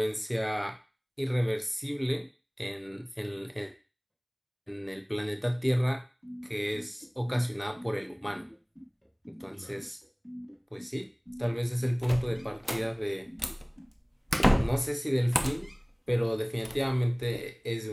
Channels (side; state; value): both; identical; correlation 1.00